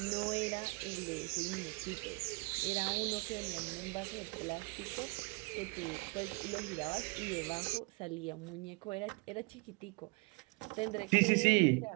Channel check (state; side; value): quieter; left; 28.8 dB